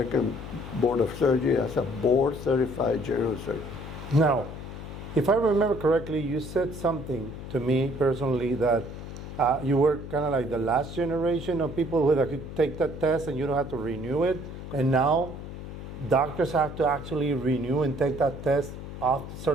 Board of Surgery as a board certified general surgeon. Now, if I remember correctly, you said something to me personally that you were kind of like the last generation of people who could take that test and you don't have to renew it. And now doctors have to actually renew and take that test after a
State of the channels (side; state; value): left; noise; hum, 10 dB below the sound